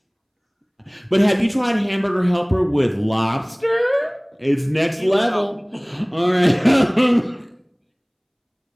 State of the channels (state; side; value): identical; both; correlation 1.00